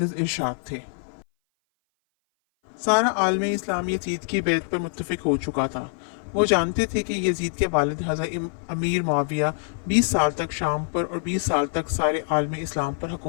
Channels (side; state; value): right; silent; 58 dB below the other